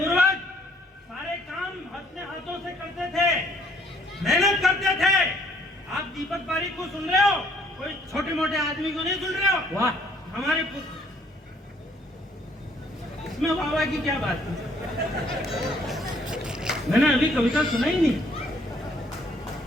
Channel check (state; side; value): normal; both; correlation 0.64